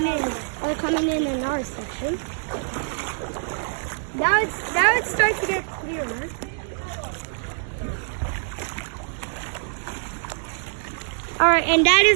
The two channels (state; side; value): silent; left; 62 dB below the other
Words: in our section. Now it's starting to get clearer. Alright, and that